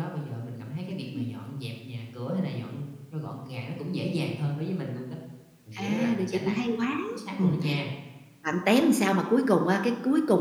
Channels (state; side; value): identical; both; correlation 1.00